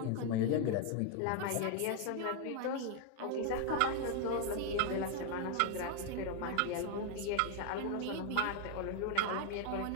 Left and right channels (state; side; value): different; both; correlation 0.00